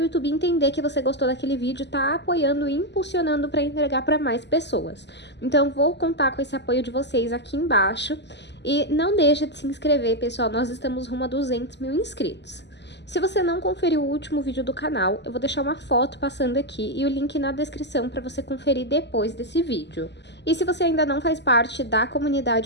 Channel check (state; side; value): late; right; 0.50 ms